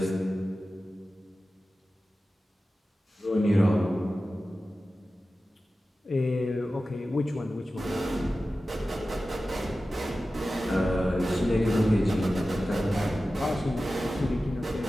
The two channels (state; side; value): normal; both; correlation 0.94